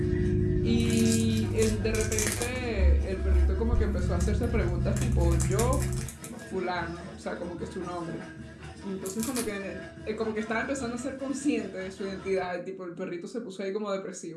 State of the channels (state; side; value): identical; both; correlation 1.00